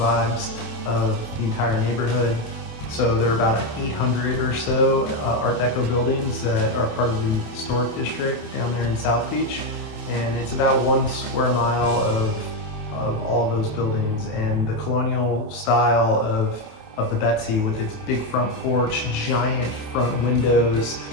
of the entire neighborhood. So there are about 800 or so Art Deco buildings that are part of the historic district down there in South Beach. And it's about 1 square mile of all of those buildings, and the colonial style of the Betsy with its big front porch, giant front windows,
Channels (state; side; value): late; right; 28 ms